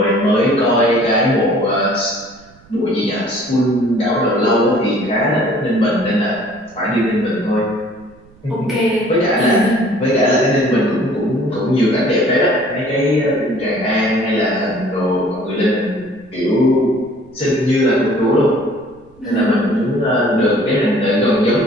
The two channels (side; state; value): right; noise; rumble, 27 dB below the sound